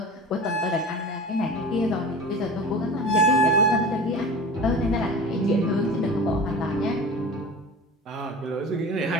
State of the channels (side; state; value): both; normal; correlation 0.35